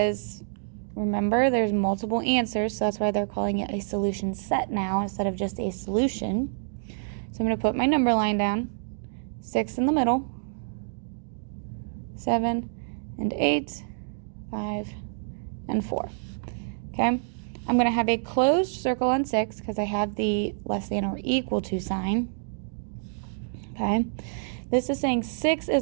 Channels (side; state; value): left; silent; digital silence